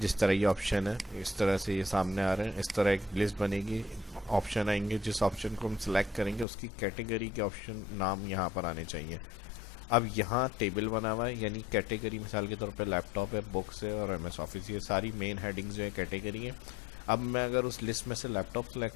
तरह ये ऑप्शन है इस तरह से ये सामने आ रहे हैं, इस तरह एक लिस्ट बनेगी, ऑप्शन आएंगे, जिस ऑप्शन को हम सिलेक्ट करेंगे उसकी कैटेगरी के ऑप्शन नाम यहाँ पर आने चाहिए। अब यहाँ टेबल बना हुआ है, यानी कैटेगरी मिसाल के तौर पे लैपटॉप है, बुक्स है और MS ऑफिस, ये सारी मेन हेडिंग्स जो है कैटेगरी है। अब मैं अगर उस लिस्ट में से लैपटॉप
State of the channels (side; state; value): right; drops out; at 6.5 s